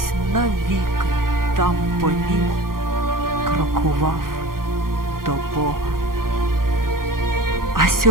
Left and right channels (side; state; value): left; late; 0.92 ms